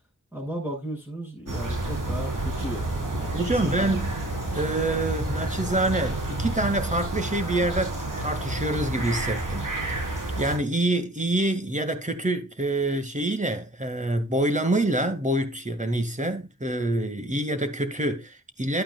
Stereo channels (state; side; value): normal; both; correlation 0.50